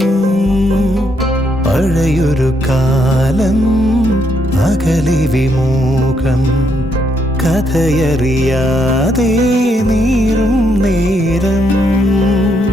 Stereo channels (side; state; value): both; normal; correlation 0.75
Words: പഴയൊരു കാലം അകലെ വിമുഖം കഥയറിയാതെ നീറും നേരം